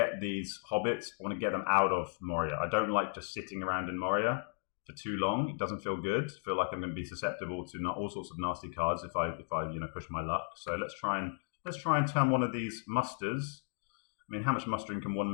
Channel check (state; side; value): silent; right; 54 dB below the other